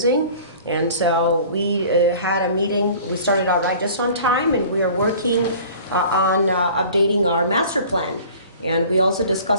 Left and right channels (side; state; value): both; inverted; correlation -0.46